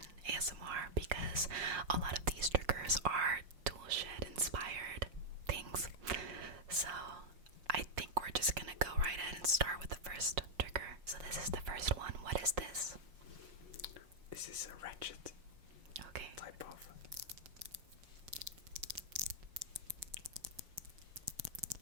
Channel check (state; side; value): late; left; 5.6 ms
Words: ASMR because a lot of these triggers are tool shed inspired things. So I think we're just gonna go right ahead and start with the first trigger. So this is the first one. What is this? This is a ratchet type of.